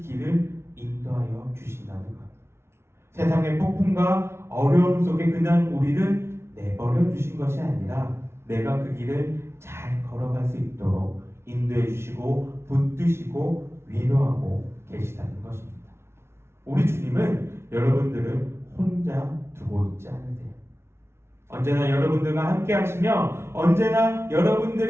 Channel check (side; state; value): left; late; 0.12 ms